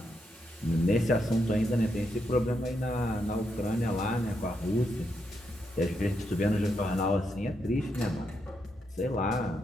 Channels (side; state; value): both; normal; correlation 0.81